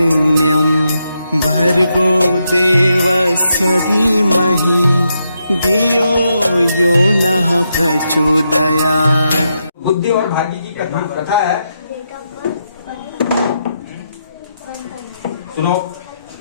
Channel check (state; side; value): inverted; both; correlation -0.82